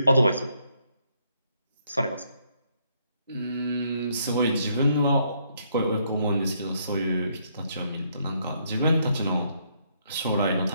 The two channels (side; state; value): both; inverted; correlation -0.72